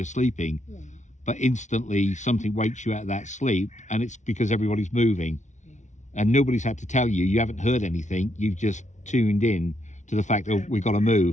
sleeping, Yeah. but instantly something wakes you out of that sleep, and it's because everybody's moving. and nobody's had to tell you. You haven't heard anything. You've just tuned in to the fact that we've got to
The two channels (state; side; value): late; right; 0.35 ms